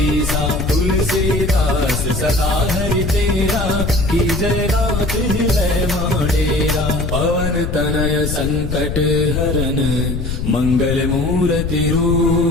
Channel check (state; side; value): noise; left; rumble, 3 dB below the sound